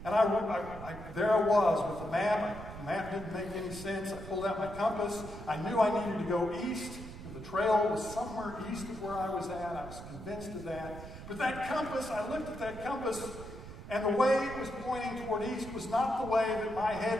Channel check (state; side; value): noise; right; rumble, 12 dB below the sound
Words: And there I was with the map. The map didn't make any sense. I pulled out my compass. I knew I needed to go east. The trail was somewhere east of where I was at. I was convinced of that. But that compass, I looked at that compass, and the way it was pointing toward east was not the way that my